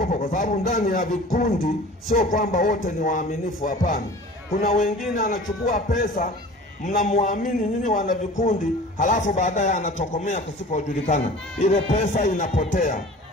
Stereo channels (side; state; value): both; normal; correlation 0.42